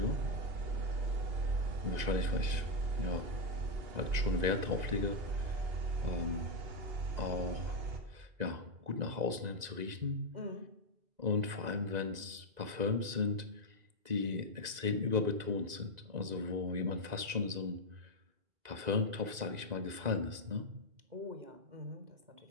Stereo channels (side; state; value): left; late; 2.0 ms